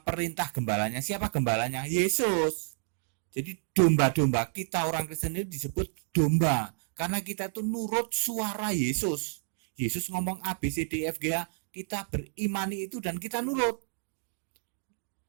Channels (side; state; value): left; silent; digital silence